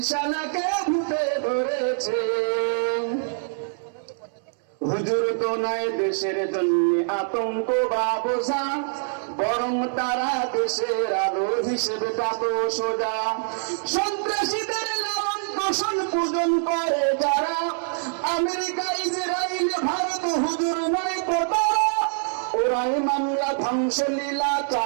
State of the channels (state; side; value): silent; left; 60 dB below the other